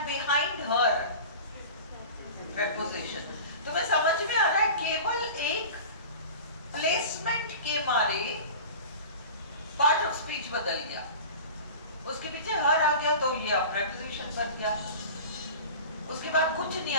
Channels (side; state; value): both; inverted; correlation -0.36